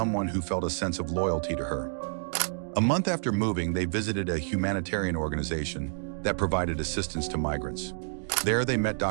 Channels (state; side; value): silent; left; digital silence